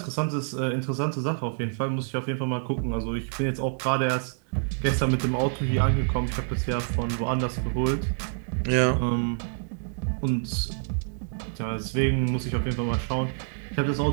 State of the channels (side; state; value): left; silent; digital silence